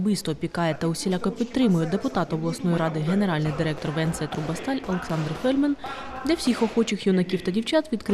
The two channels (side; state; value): both; identical; correlation 1.00